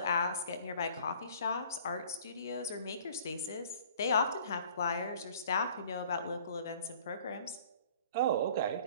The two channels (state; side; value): inverted; both; correlation -0.51